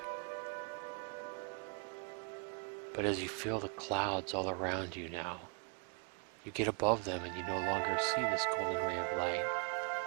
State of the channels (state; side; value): quieter; left; 36.8 dB